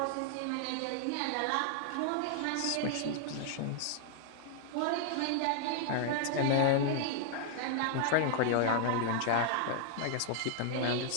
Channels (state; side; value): different; both; correlation 0.00